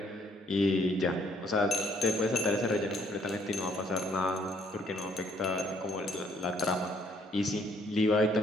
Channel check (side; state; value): both; normal; correlation 0.66